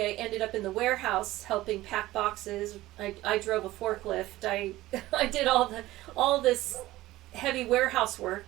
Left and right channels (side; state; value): left; quieter; 16.8 dB